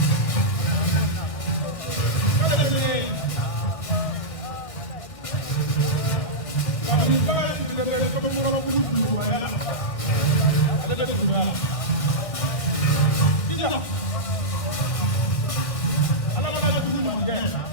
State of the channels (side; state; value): right; late; 1.5 ms